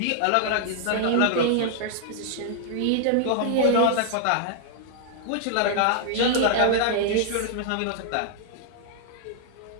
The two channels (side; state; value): both; different; correlation -0.01